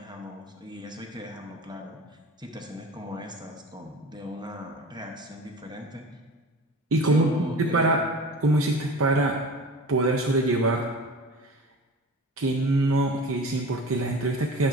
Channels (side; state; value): both; normal; correlation 0.37